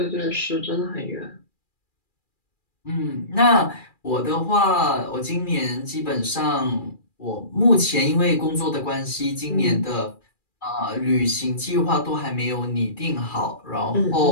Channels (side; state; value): right; late; 2.4 ms